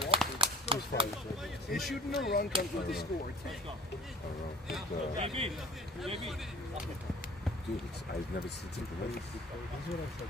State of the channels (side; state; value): both; normal; correlation 0.47